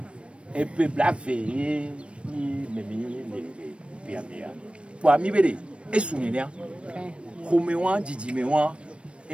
e pe blave ni memi le piamea pour mi bere e sunenia khomewa jijimewa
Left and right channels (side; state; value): left; late; 0.059 ms